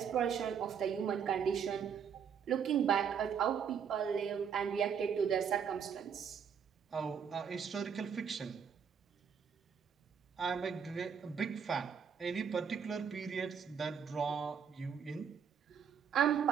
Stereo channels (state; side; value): quieter; left; 7.3 dB